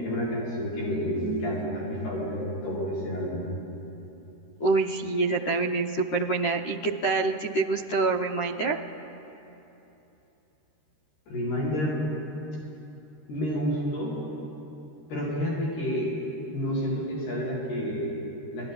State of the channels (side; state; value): right; late; 13 ms